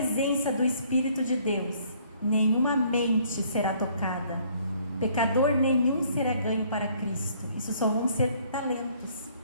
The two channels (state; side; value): inverted; both; correlation -0.61